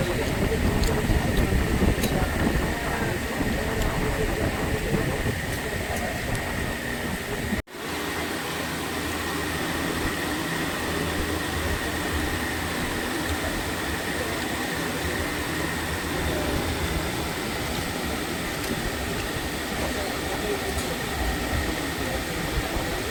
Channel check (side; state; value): both; identical; correlation 1.00